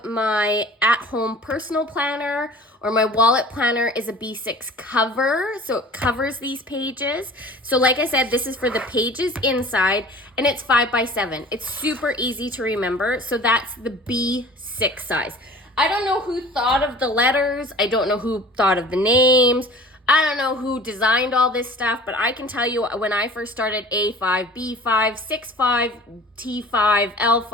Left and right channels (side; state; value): both; normal; correlation 0.44